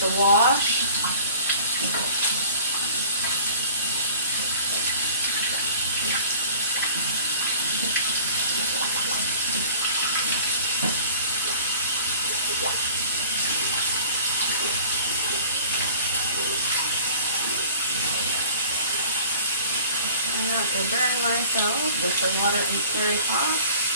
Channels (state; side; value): inverted; both; correlation -0.46